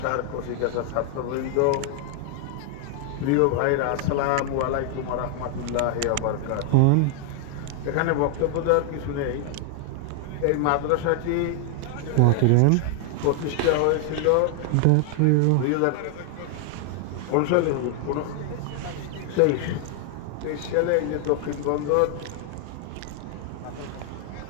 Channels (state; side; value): different; both; correlation 0.00